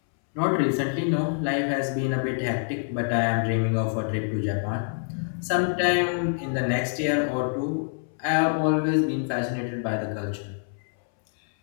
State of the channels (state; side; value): silent; right; 61 dB below the other